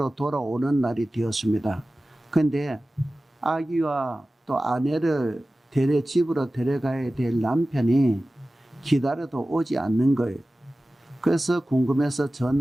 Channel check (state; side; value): normal; both; correlation 0.96